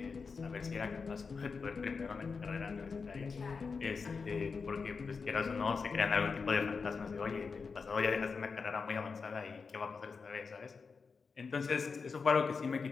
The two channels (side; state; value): right; quieter; 5.0 dB